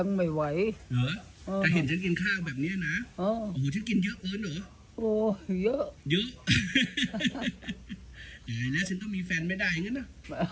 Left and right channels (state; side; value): identical; both; correlation 1.00